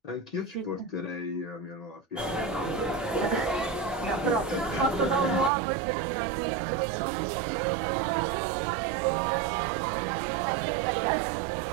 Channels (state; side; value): drops out; left; at 5.5 s